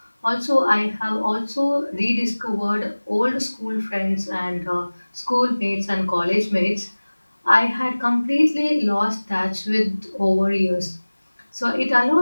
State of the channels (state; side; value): inverted; both; correlation -1.00